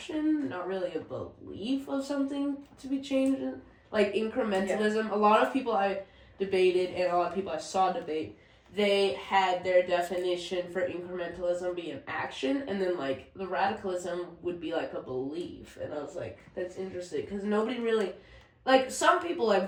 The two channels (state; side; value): identical; both; correlation 1.00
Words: not really a belief of something to be changed. Like incrementalism, a lot of people I debated and a lot of people I saw debate, they had their definition for incrementalism be an action, and then like the radicalism would be like a belief. And I was like, that's interesting, because nobody really, like some people, like